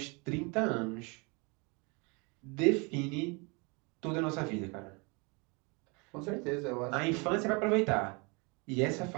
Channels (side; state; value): left; quieter; 30.3 dB